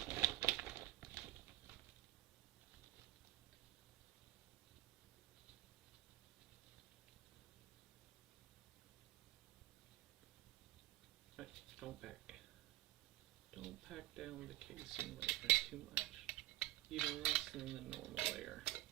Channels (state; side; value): quieter; left; 16.9 dB